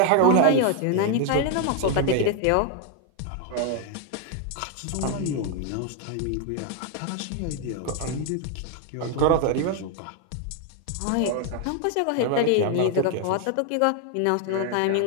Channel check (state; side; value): different; both; correlation 0.00